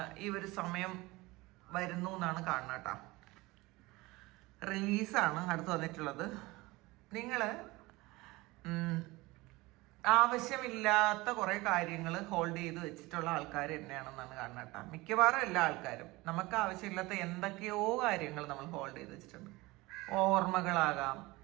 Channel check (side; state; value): left; quieter; 21.5 dB